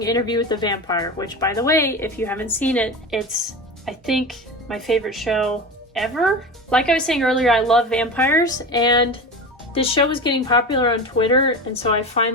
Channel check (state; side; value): normal; both; correlation 0.27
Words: Interview with the Vampire, which, by the way, if you haven't seen it, it's, I think, my favorite show ever. Like I was saying earlier, I love vampires, and this show was getting popular on Twitter, and so I